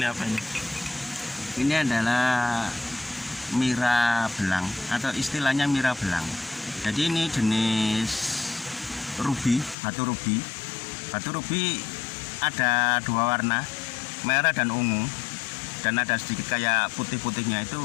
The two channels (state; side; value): drops out; right; at 9.8 s